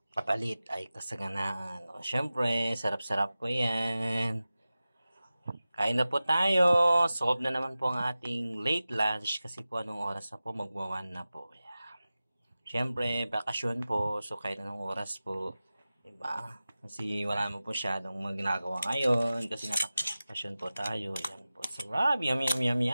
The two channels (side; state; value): both; inverted; correlation -0.96